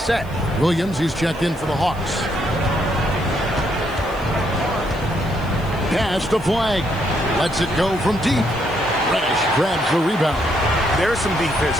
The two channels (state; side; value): noise; left; hiss, 25 dB below the sound